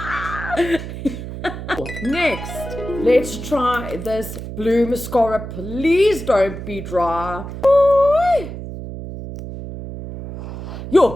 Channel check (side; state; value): right; noise; hum, 9 dB below the sound